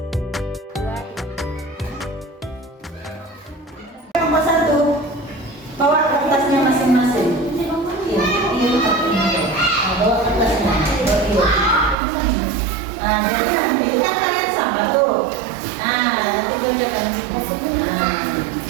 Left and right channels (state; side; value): drops out; left; at 12.0 s